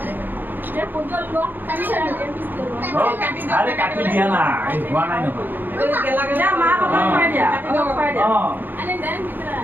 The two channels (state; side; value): late; left; 0.091 ms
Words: আৰে কাটি দিয়া না এই হোৱা নাই নহয় মা বাবা খাই দিয়া